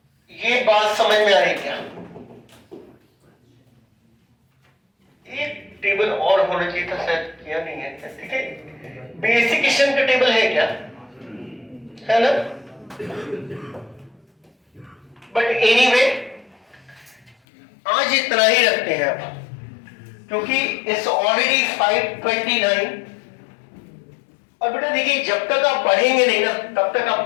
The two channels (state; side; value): drops out; right; at 17.4 s